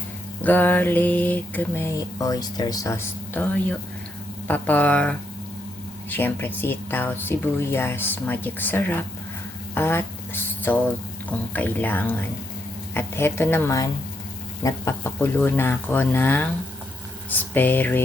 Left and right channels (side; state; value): both; normal; correlation 0.78